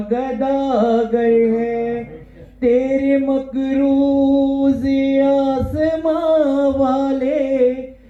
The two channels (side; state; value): both; identical; correlation 1.00